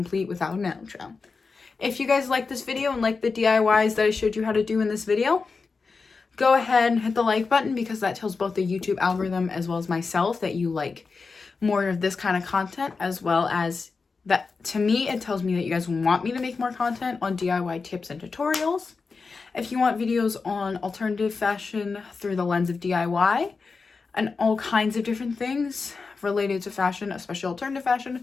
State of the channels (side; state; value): right; quieter; 4.6 dB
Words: without an outro. If you guys like this video and like the DIYs that I showed you how to do in this video, go ahead and hit the like button because that tells both the YouTube algorithm as well as myself that you like more of this kind of content, as well as that to me, it tells me that you guys want me to make more content on DIY tips and tutorials. If you want videos on alternative fashion through the lens of DIY and all kinds of different things related to fashion, especially alternative